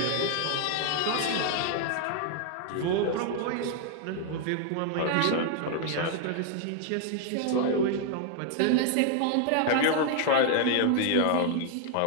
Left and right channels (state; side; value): different; both; correlation 0.00